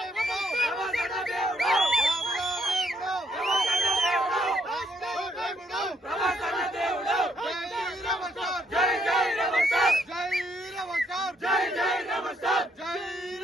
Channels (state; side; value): normal; both; correlation 0.71